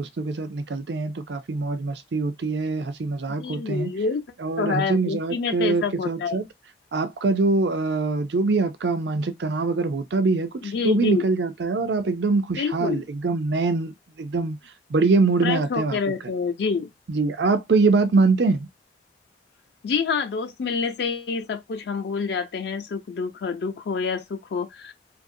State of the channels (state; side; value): normal; both; correlation 0.41